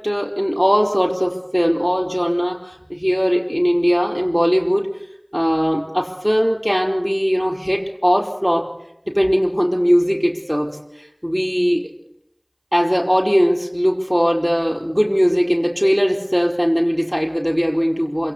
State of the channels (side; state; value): both; identical; correlation 1.00